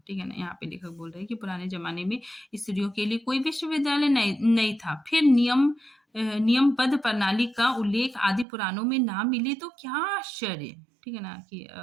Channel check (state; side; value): drops out; left; at 8.5 s